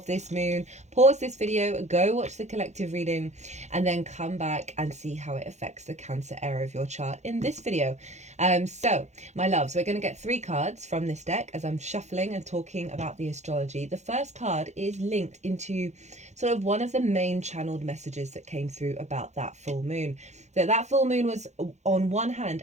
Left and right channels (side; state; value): left; late; 0.33 ms